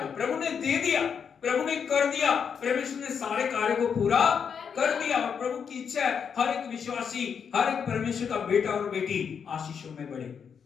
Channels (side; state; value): right; quieter; 6.9 dB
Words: प्रभु ने दे दिया, प्रभु ने कर दिया, परमेश्वर ने सारे कार्य को पूरा कर दिया। और प्रभु की इच्छा है हर एक विश्वासी, हर एक परमेश्वर का बेटा और बेटी आशीषों में बढ़े,